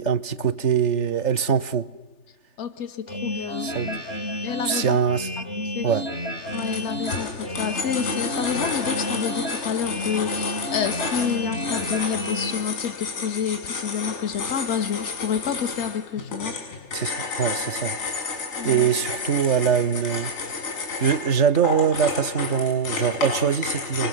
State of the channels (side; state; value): right; late; 3.3 ms